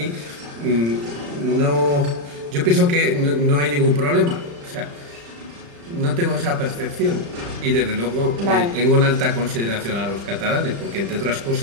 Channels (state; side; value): late; left; 35 ms